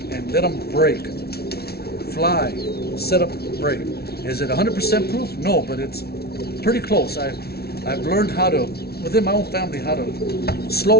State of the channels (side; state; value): right; late; 0.45 ms